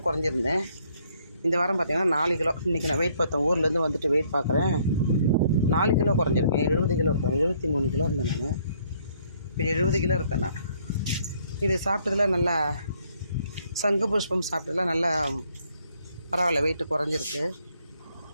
குறைஞ்சிருந்தேன். இந்த வாரம் பார்த்தீங்கன்னா 4 கிலோ. இன்றைக்கி நான் வெயிட் பார்த்தேன், ஊர்லேருந்து வந்துட்டு வெயிட் பார்க்குறேன். 4 கிலோ குறைஞ்சிருக்கேன். 70 கிலோ இருக்கேன். 73 கிலோ இருந்தேன் நான். இப்போ 70 கிலோ இருக்கேன் நான். இது சாப்பிட்டதில் நல்லா, சங்கு புஷ்பம் சாப்பிட்டதில் நல்லா பரவாயில்ல, வெயிட்டு குறைஞ்சிருக்கு.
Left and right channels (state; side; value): inverted; both; correlation -0.66